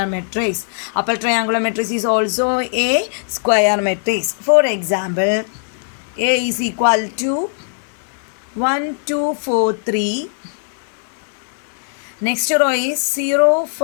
matrix. Upper triangular matrix is also a square matrix. For example, A is equal to 1 2 4 3. Next row is 0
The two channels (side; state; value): right; silent; digital silence